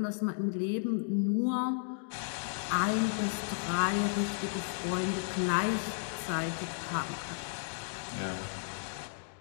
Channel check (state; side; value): silent; right; digital silence